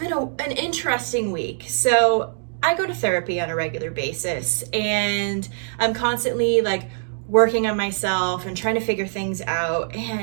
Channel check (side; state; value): left; silent; digital silence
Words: an interesting week. So I go to therapy on a regular basis and I'm constantly working on myself and trying to figure things out.